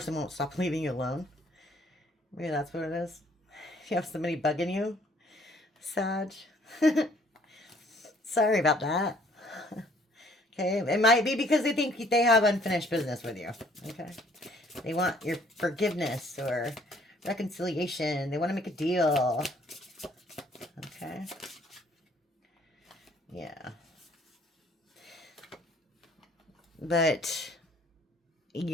won't stop leaving you alone. Maybe that's what it is. You have somebody bugging you, Sag. Sorry about that. Okay, it might be because they think they have unfinished business with you. Okay, they want your forgiveness or reconciliation. They want to make a deal. Okay, yeah, but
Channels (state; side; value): normal; both; correlation 0.60